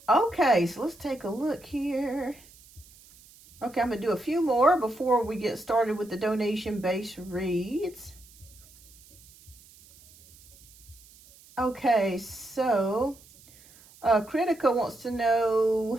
Okay, so let's take a look here. Okay, I'm going to do a few more before we get started with the donation-based reads. Okay, so Critica wants to know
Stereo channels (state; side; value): noise; right; hiss, 24 dB below the sound